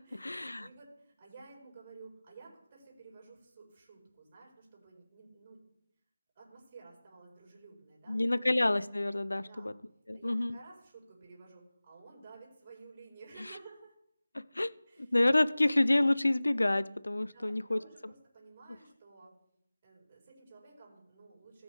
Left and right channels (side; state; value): both; inverted; correlation -0.99